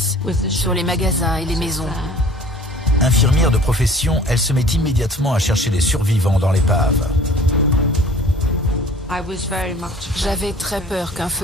sur les magasins et les maisons. Infirmière de profession, elle se met immédiatement à chercher des survivants dans l'épave. J'avais très peur qu'un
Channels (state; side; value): normal; both; correlation 0.47